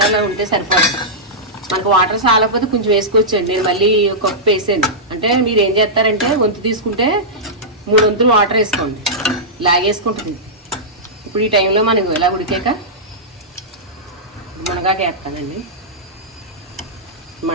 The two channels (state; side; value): normal; both; correlation -0.13